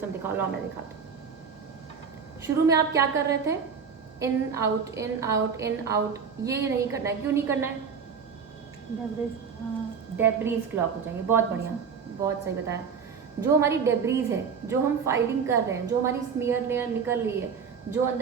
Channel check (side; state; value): left; quieter; 6.3 dB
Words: दिखाओ, लो मैं दिखाता हूँ। शुरू में आप क्या कर रहे थे? In out in out in out, ये नहीं करना है। क्यों नहीं करना है? डेब्रीज क्लॉक हो जाएंगे। बहुत बढ़िया, बहुत सही बताया। जो हमारी डेब्रीज है, जो हम फाइलिंग कर रहे हैं, जो हमारी स्मीयर लेयर निकल रही है, जो